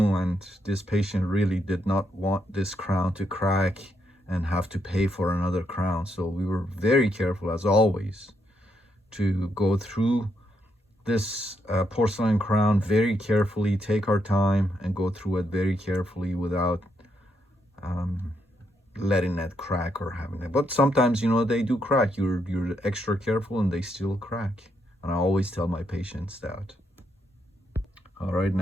and this patient really did not want this crown to crack and have to pay for another crown. So we were very careful, as always, to go through this porcelain crown very carefully, take our time and go through it very carefully without letting it crack or having it. But sometimes, you know, they do crack. You're extra careful and they still crack. And I always tell my patients that. All right,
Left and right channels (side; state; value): both; normal; correlation 0.78